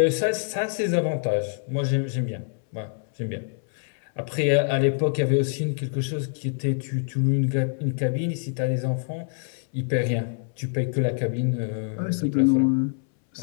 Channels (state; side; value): silent; right; 61 dB below the other